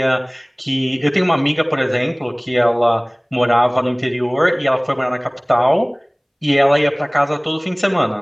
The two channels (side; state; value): both; identical; correlation 1.00